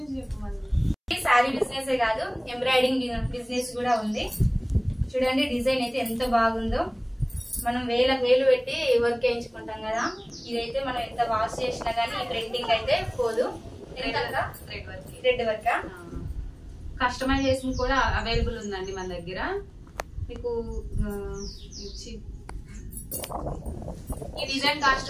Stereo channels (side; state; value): both; identical; correlation 1.00